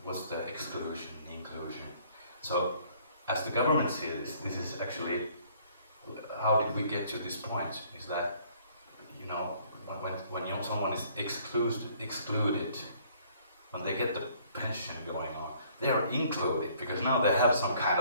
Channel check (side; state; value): both; inverted; correlation -0.60